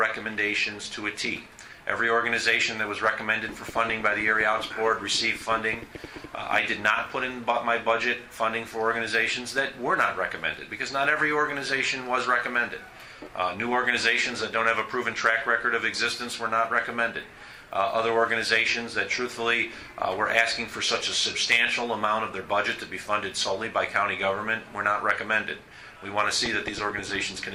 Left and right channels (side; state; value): both; identical; correlation 1.00